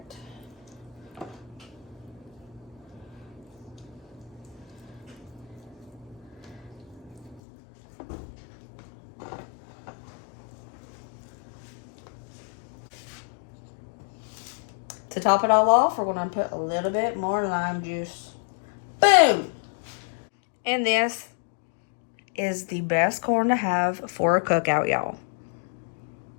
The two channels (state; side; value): drops out; right; at 7.4 s